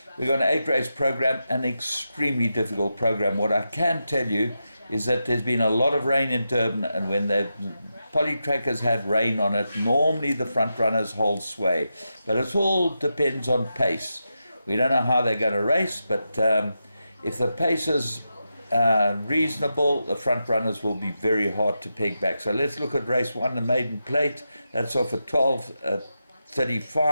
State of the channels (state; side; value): inverted; both; correlation -0.88